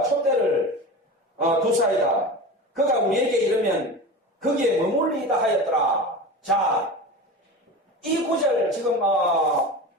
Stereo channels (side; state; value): both; normal; correlation 0.30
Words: 촛대를 두사이다. 그가 우리에게 이르면 거기에 머물리다 하였더라. 자, 이 구절 지금